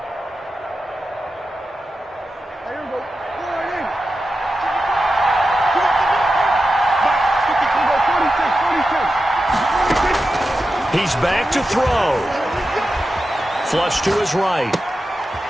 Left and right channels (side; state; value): both; normal; correlation 0.91